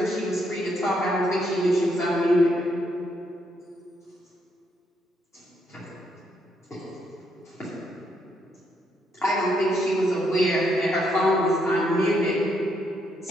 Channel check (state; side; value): normal; both; correlation 0.76